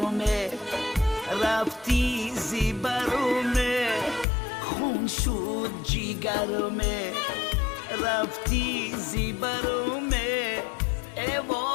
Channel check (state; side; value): drops out; right; at 4.2 s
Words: رفتی زیبرومه خون شد جیگرومه، رفتی زیبرومه ای